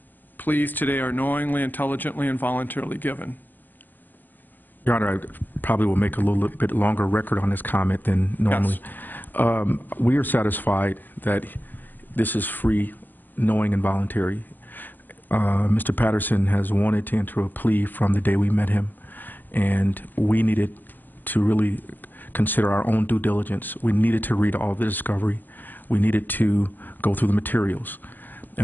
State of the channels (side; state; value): right; late; 0.090 ms